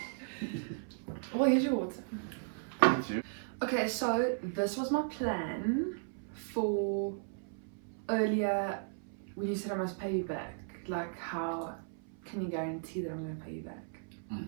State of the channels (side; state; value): left; silent; 54 dB below the other